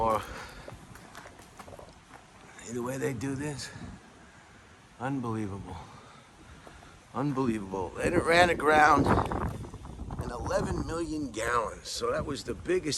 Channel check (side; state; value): both; identical; correlation 1.00